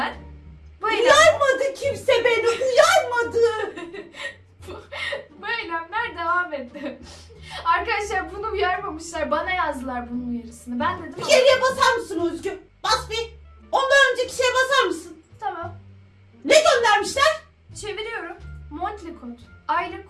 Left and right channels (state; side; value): identical; both; correlation 1.00